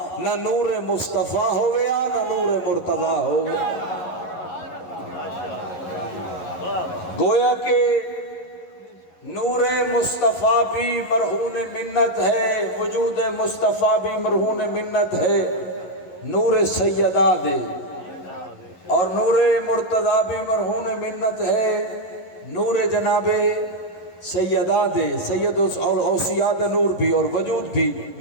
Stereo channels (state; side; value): late; right; 11 ms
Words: نہ نور مصطفیٰ ہویا نہ نور مرتضی ہویا. گویا کہ نور مصطفیٰ بھی مرہون منت ہے، وجود مصطفیٰ بھی مرہون منت ہے. نور سیدہ دے اور نور مرتضی بھی مرہون منت ہے. نور جناب سیدہ دے، سید اوصیاء دا نور بھی اور وجود بھی.